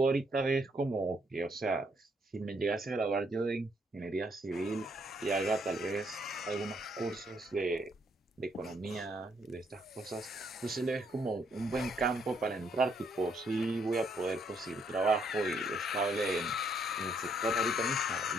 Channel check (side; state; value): both; normal; correlation 0.71